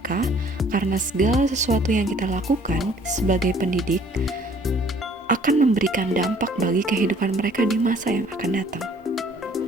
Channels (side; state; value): both; normal; correlation 0.57